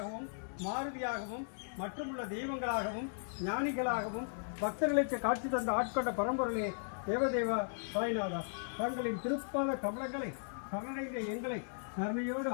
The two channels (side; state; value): right; silent; digital silence